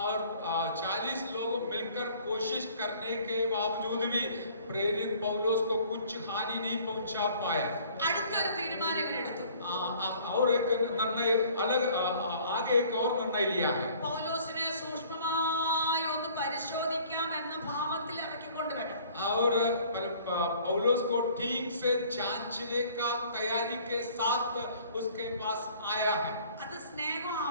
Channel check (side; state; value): both; inverted; correlation -0.54